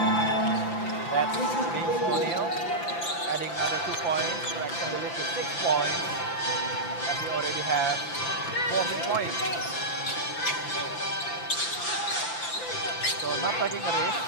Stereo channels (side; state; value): right; late; 5.9 ms